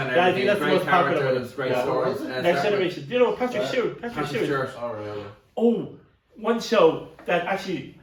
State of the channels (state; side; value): identical; both; correlation 1.00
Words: and Yeah, I everything. think that's the Great most popular one. characters, great stories. Next Generation. Do you know Patrick Yeah. Stewart? Patrick Stewart. Alright. Oh, one show that actually